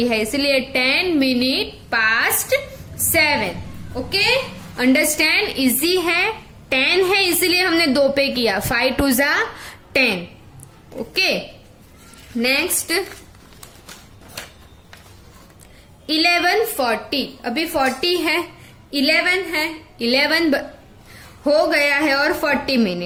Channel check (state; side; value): identical; both; correlation 1.00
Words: है, इसलिए 10 minute past 7। Okay, understand? Easy है। 10 है इसलिए हमने 2 पे किया। 5 2 जा 10। Okay, next 11:40। अभी 40 है, 11 है, 11 हो गया है और 40